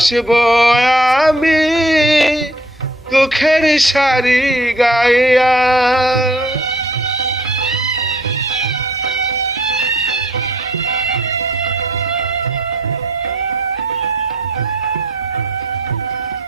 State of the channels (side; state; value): both; normal; correlation 0.60